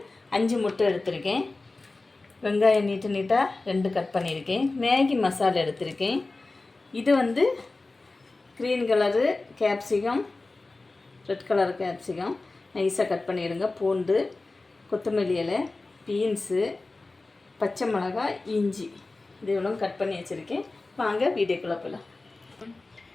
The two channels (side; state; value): right; quieter; 3.3 dB